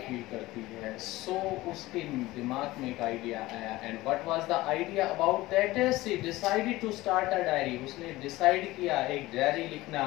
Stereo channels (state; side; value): quieter; right; 18.6 dB